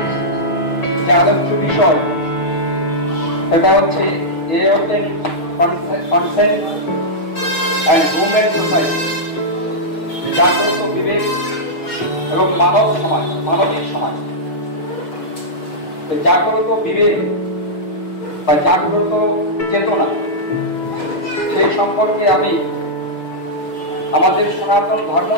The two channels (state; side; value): late; right; 6.5 ms